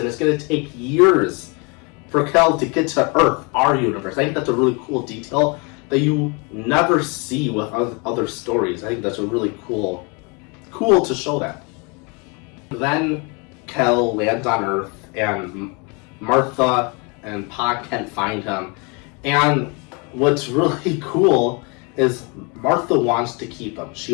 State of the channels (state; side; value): quieter; right; 31.5 dB